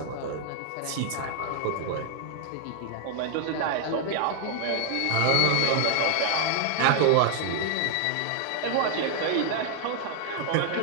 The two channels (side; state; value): both; different; correlation 0.00